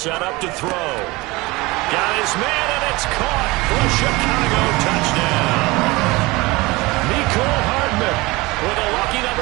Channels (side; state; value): left; quieter; 22.4 dB